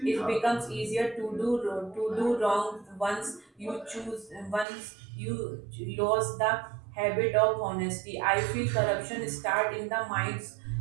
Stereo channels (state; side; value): drops out; left; at 4.7 s